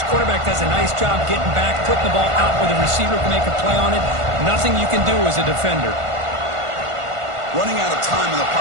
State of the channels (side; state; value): left; late; 1.5 ms